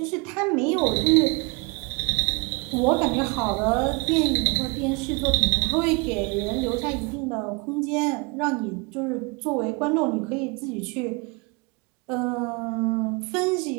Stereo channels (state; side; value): quieter; left; 28.7 dB